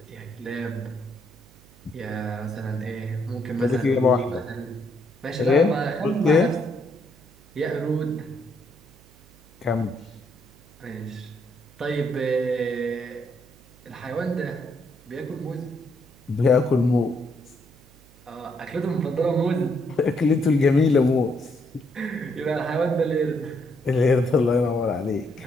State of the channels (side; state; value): right; noise; hum, 26 dB below the sound